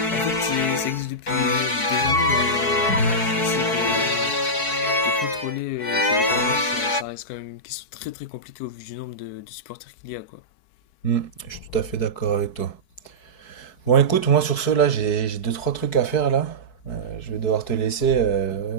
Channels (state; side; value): late; right; 4.6 ms